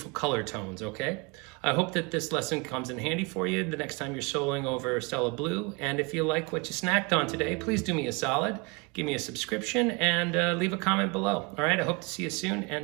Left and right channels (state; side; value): quieter; left; 29.3 dB